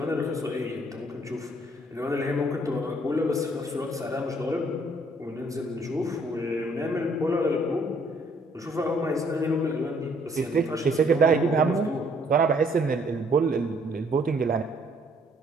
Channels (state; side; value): normal; both; correlation 0.64